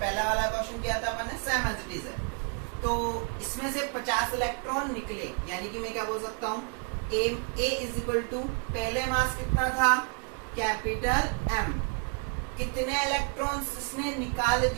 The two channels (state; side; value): quieter; left; 37.9 dB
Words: वाला क्वेश्चन किया था अपने, सेम एज इट इज है। तो इसमें से 50 इलेक्ट्रॉन निकले, यानी कि मैं क्या बोल सकता हूँ, ए इज इक्वल टू पहले मास कितना था, कैपिटल एम। कितने इलेक्ट्रॉन्स इसने निकाल